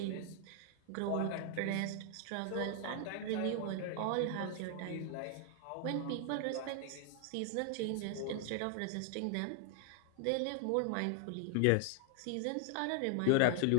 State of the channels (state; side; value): different; both; correlation 0.00